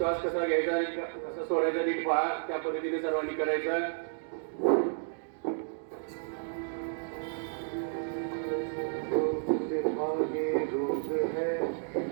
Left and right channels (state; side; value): silent; left; digital silence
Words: कसा घ्यायचा आणि कसा सोडायचा नीट पहा। त्या पद्धतीने सर्वांनी करायचं। योग है